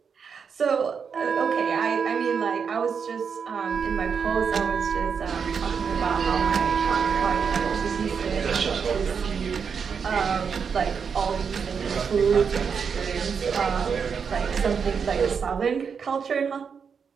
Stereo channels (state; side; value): quieter; left; 6.3 dB